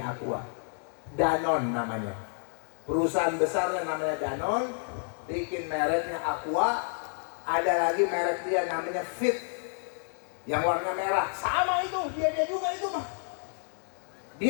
Aqua. Danone namanya. Perusahaan besarnya namanya Danone, bikin mereknya Aqua. Ada lagi merek dia namanya Fit yang warna merah. Sama itu, dia juga itu mah.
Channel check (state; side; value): silent; right; digital silence